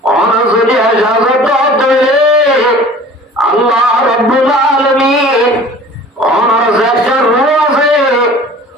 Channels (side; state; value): both; normal; correlation 0.45